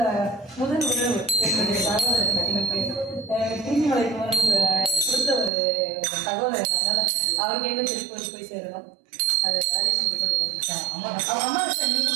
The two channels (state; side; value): drops out; left; at 5.5 s